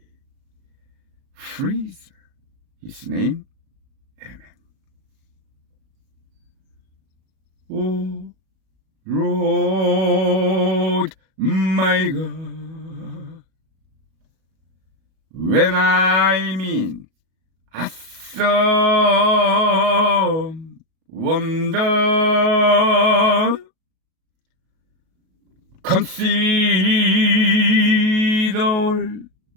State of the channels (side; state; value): left; late; 37 ms